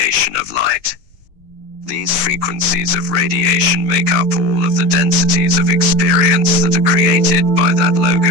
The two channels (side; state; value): left; late; 6.7 ms